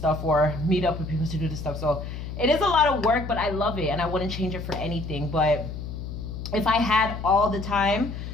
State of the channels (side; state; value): left; noise; hum, 8 dB below the sound